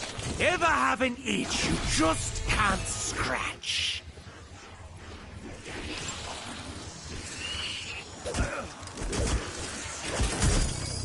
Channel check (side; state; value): both; identical; correlation 1.00